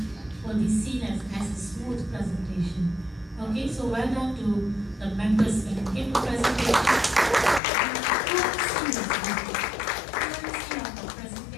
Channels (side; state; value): right; drops out; at 7.6 s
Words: will be seen as a smooth presentation. Okay, so well done to the members when you gave the presentation. Fluency of the